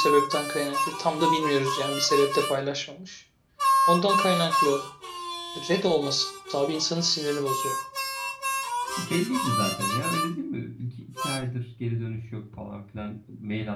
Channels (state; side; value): identical; both; correlation 1.00